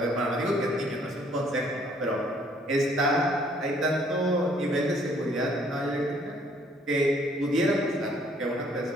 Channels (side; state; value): both; normal; correlation 0.63